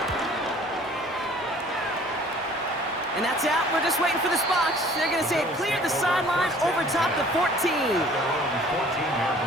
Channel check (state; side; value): normal; both; correlation 0.52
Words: And that's out. We're just waiting for the spots. They're going to say it cleared the sideline over top the 14. their own 14-yard